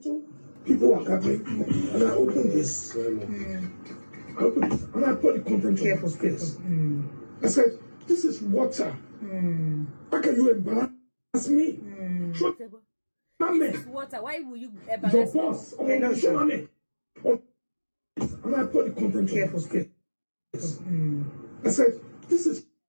People are gathering, and I opened this. I opened this, and I put the content Careful, on this. I said, "This is water. How can you embarrass me? Show This is water. Why will you your embarrass me? boss. Show me." And I put the content Careful, on this. I said, "This is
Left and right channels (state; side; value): inverted; both; correlation -1.00